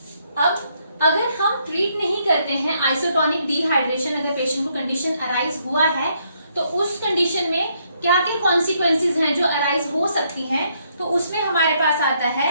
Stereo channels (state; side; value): inverted; both; correlation -0.73